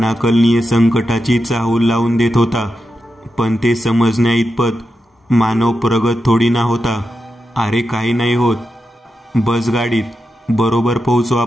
संकटाची चाहूल लावून देत होता. पण ते समजण्या इतपत मानव प्रगत थोडी ना होता. अरे काही नाही होत, बस गाडीत, बरोबर पोहोचू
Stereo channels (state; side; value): normal; both; correlation 0.88